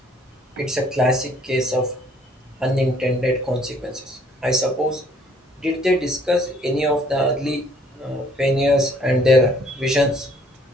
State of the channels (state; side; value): normal; both; correlation 0.61